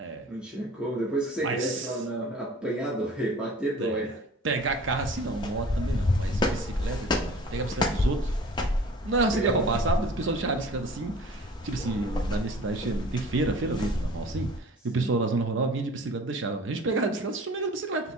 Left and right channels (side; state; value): both; normal; correlation 0.45